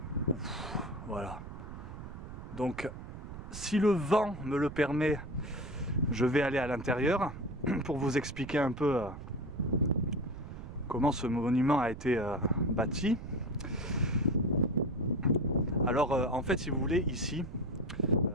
Hein. Voilà. Donc, si le vent me le permet, je vais aller à l'intérieur pour vous expliquer un peu comment ce monument a été bâti. Alors en fait, si vous voulez, ici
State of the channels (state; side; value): noise; right; rumble, 11 dB below the sound